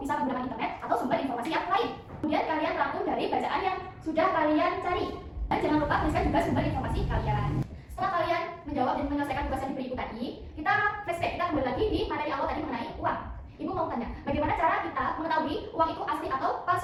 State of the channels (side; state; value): both; identical; correlation 1.00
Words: bisa menggunakan internet, atau sumber informasi yang lain. Kemudian kalian rangkum dari bacaan yang sudah kalian cari. Dan jangan lupa tuliskan juga sumber informasi kalian. Setelah kalian menjawab dan menyelesaikan tugas yang diberi Ibu tadi, kita flashback, kita kembali lagi di materi awal tadi mengenai uang. Ibu mau tanya, bagaimana cara kita mengetahui uang itu asli atau